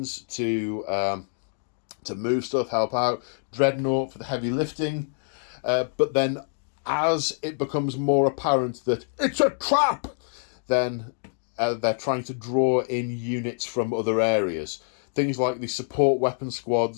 to move stuff, help out. Dreadnought for the heavy lifting. But then, as it becomes more apparent that it's a trap, then they're trying to draw in units from other areas. Things like the support weapon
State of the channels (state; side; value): silent; right; 61 dB below the other